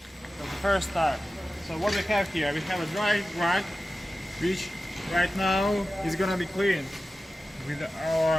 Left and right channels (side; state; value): both; normal; correlation 0.94